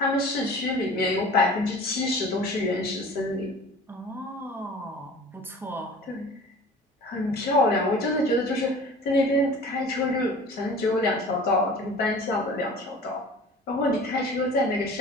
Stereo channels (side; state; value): both; normal; correlation 0.42